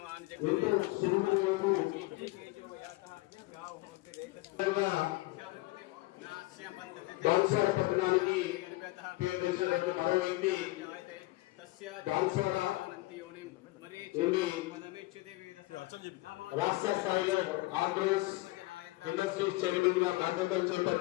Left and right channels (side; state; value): right; quieter; 20.2 dB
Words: ఎంతో శుభ్రంగా బాన్సాడ పట్టణానికి పేరు తెచ్చిన మరో వ్యక్తి బాన్సాడ నుండి రాష్ట్ర స్థాయిలో ఆంధ్రప్రదేశ్ ఇండస్ట్రీస్ చైర్మన్ గా బాధ్యతలు